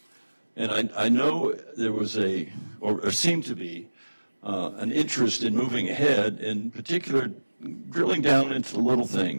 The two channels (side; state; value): both; inverted; correlation -1.00